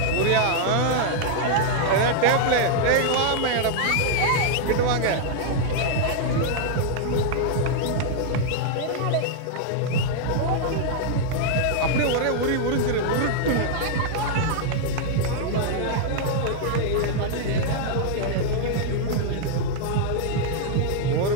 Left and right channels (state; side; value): different; both; correlation -0.01